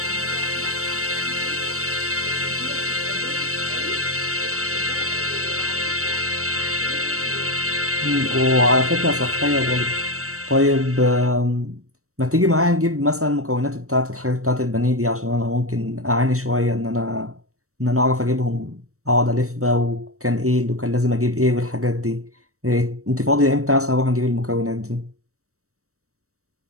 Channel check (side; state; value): left; late; 0.64 ms